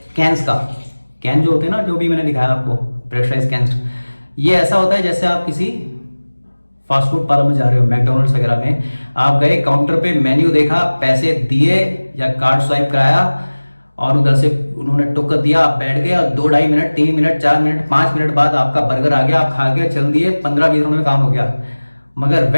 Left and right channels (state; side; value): inverted; both; correlation -1.00